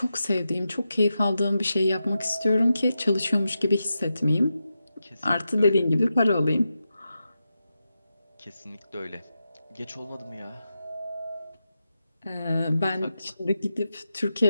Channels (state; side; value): inverted; both; correlation -0.89